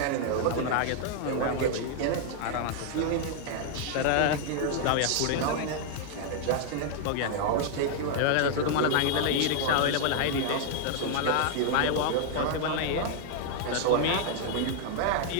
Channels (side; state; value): both; different; correlation 0.00